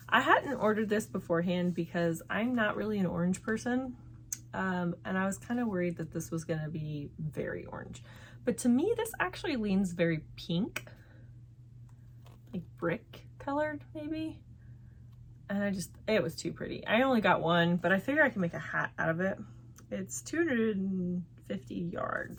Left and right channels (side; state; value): both; identical; correlation 1.00